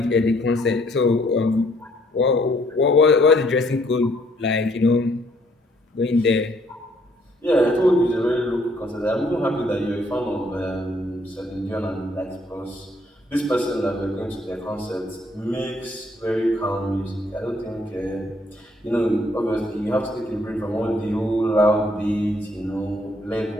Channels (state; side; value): normal; both; correlation 0.66